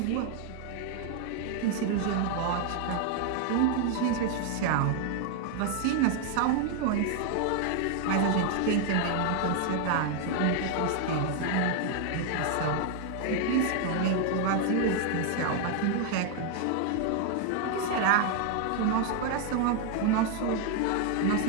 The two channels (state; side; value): different; both; correlation 0.00